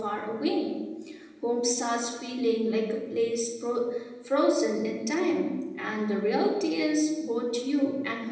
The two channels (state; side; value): identical; both; correlation 1.00